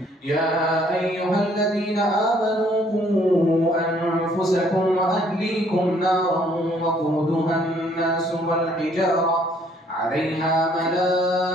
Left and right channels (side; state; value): both; normal; correlation 0.63